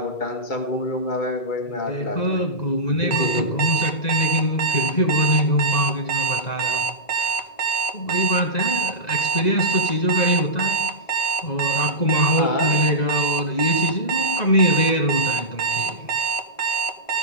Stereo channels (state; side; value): late; right; 1.9 ms